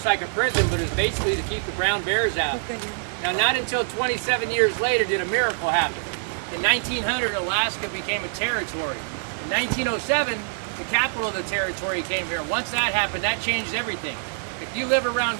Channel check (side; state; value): left; silent; 59 dB below the other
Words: like a prison, but it's basically to keep the brown bears out. Now, not until 27 years later did a miracle happen. In 1900, Alaska became a territory. In 1907, the capital of the territory came here. Once that happened, that changed everything. If you live